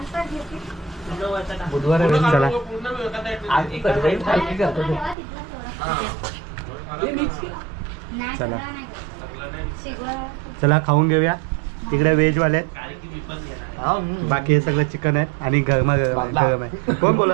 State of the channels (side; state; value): left; drops out; at 5.2 s